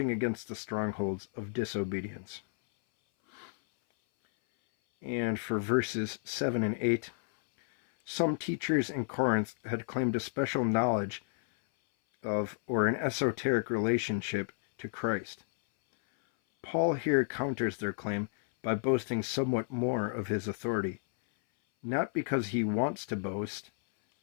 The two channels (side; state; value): right; silent; 57 dB below the other